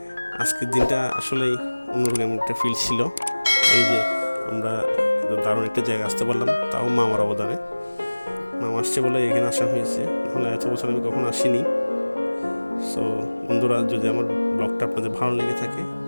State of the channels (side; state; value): both; inverted; correlation -1.00